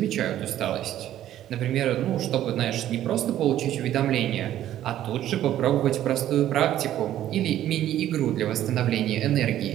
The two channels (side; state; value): left; quieter; 12.3 dB